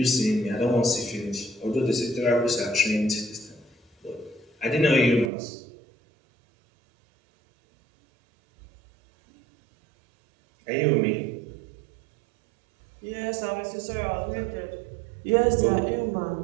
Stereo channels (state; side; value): drops out; left; at 5.3 s